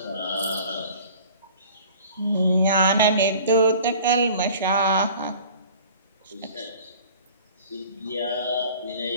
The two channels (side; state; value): both; inverted; correlation -0.46